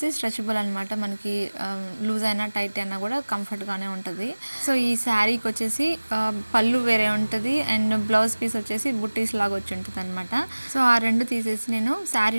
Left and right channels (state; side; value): inverted; both; correlation -1.00